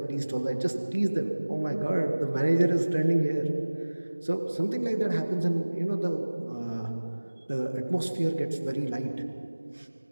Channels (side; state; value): both; inverted; correlation -1.00